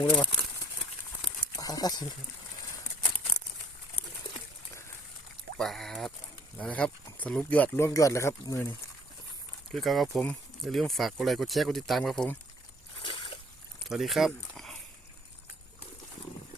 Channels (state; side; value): normal; both; correlation 0.58